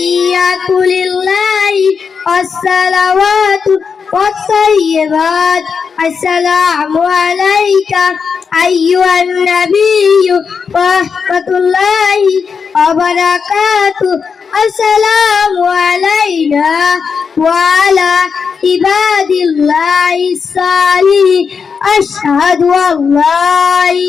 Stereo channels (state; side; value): quieter; right; 5.8 dB